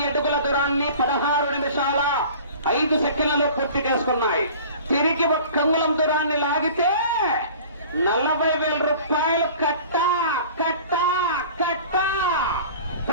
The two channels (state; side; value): inverted; both; correlation -0.43